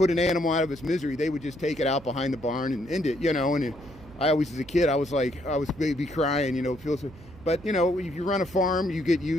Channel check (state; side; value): noise; right; hum, 20 dB below the sound